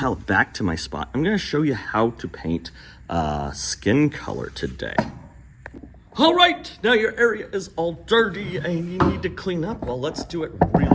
back to my spot. I'm gonna show you how to paint skin color today. All right, now your area is all dirty and you need to clean up. Well, let's do it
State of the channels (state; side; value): identical; both; correlation 1.00